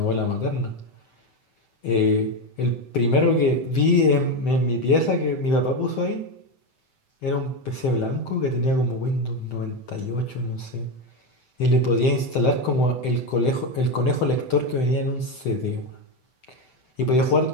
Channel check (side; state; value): right; late; 8.0 ms